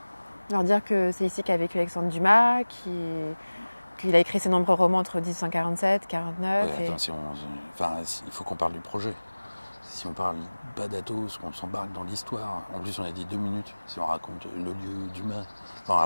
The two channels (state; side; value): inverted; both; correlation -1.00